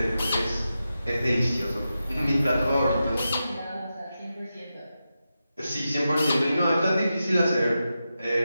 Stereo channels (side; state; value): both; inverted; correlation -0.90